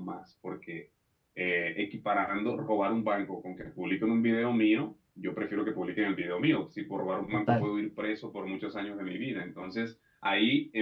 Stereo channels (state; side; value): identical; both; correlation 1.00